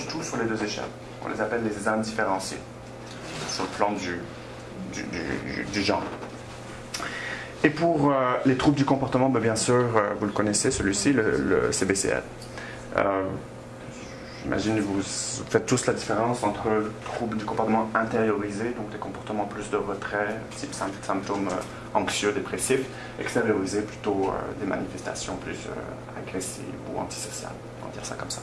tout sur les deux échelles, on les appelle les indifférenciés, sur le plan du genre. Et pour les troubles du comportement, bien sûr, vous le connaissez, celui-ci, le CBCL. J'imagine que vous faites tous la différence entre le trouble du comportement intériorisé, donc des comportements plus de retrait, type symptômes anxieux, dépressifs, extériorisé, plutôt des manifestations plus agressives ou antisociales, on va dire ça comme ça.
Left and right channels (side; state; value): both; identical; correlation 1.00